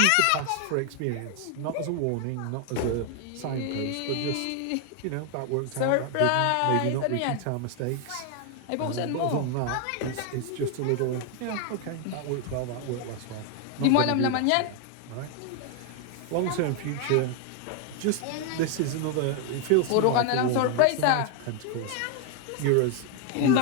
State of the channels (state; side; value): different; both; correlation 0.00